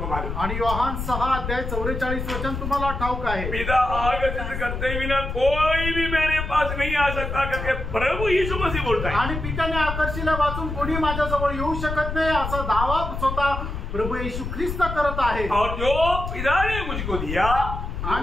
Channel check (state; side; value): noise; left; rumble, 5 dB below the sound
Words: मालूम, आणि योहान 6 अध्याय 44 वचन तुम्हाला ठाऊक आहे? पिता आगत करते बिना कोई भी मेरे पास नहीं आ सकता करके प्रभु यीशु मसीह बोलता है। आणि पित्याने आकर्षिले वाचून कोणी माझ्याजवळ येऊ शकत नाही असा दावा स्वतः प्रभु येशू ख्रिस्त करत आहे। और जो पिता ने मुझको दिया